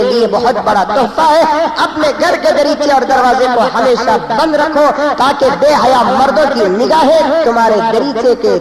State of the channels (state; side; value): identical; both; correlation 1.00